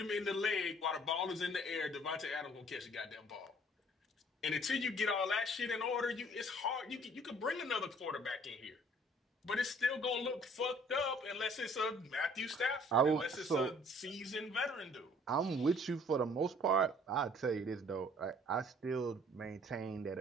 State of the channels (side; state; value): both; normal; correlation 0.57